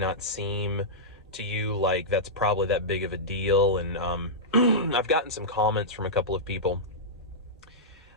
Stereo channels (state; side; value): normal; both; correlation -0.12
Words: seem to you like that's probably that big of a deal. And I've gotten some comments from a couple of people